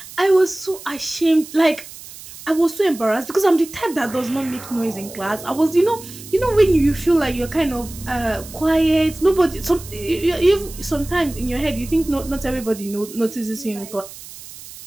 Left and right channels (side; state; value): right; noise; hiss, 16 dB below the sound